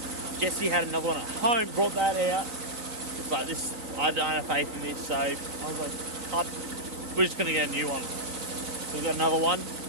Jesse had another one at home, brought that out. It's like this, I don't have faith in this, so I was like, we're just gonna get a new one. So we've got another one.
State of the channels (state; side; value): late; left; 3.9 ms